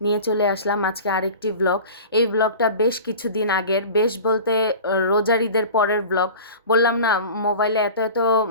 নিয়ে চলে আসলাম আজকে আরেকটি ব্লগ। এই ব্লগটা বেশ কিছুদিন আগের, বেশ বলতে রোজার ঈদের পরের ব্লগ। বললাম না, মোবাইলে এত এত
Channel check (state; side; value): inverted; both; correlation -0.36